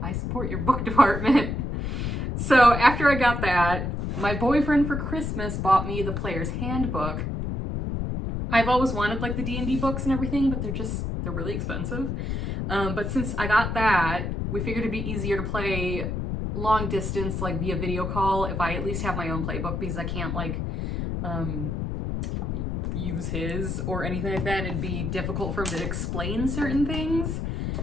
I support your book department. So after I got that, my boyfriend for Christmas bought me the Player's Handbook. I've always wanted like the D&D books and everything, but they're really expensive. But since I got that, we figured it'd be easier to play long distance, like via video call, if I at least have my own playbook, because I can't like use his or anything like that. It'd be difficult for him to explain certain things.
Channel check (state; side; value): noise; left; rumble, 2 dB below the sound